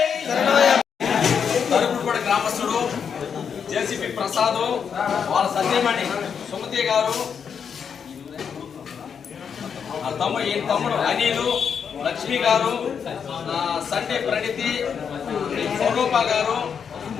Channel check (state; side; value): quieter; right; 7.0 dB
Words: తరుగుడుపడి గ్రామస్తుడు JCP Prasad వాళ్ళ సత్యమణి సుమతి గారు తమ్ముడు అనిలు లక్ష్మి గారు సండే ప్రణితి స్వరూప గారు